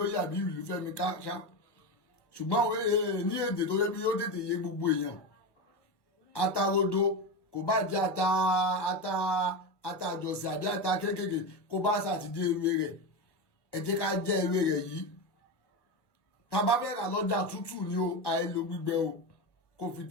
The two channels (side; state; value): right; late; 1.1 ms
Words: àbí ìlúfẹ́mi káṣá, ṣùgbọ́n ní èdè tó yẹ bí yóò tètè yé gbogbo èèyàn, ata rodo kò bá jẹ́ ata àjọsìn àbí ata kéékèèké kó bá ṣàtìdé ewé rẹ̀, ẹ jẹ́ ká jẹ́ ewé rẹ̀ yìí. Tá bá fẹ́ rà lọ́jà tútù ni o, àìlò gbígbẹ o, kó fi